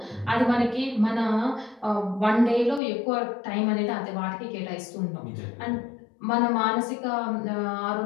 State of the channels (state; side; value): drops out; right; at 2.8 s